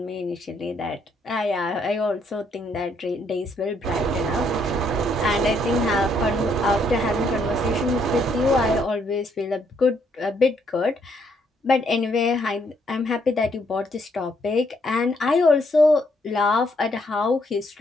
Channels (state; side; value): normal; both; correlation 0.71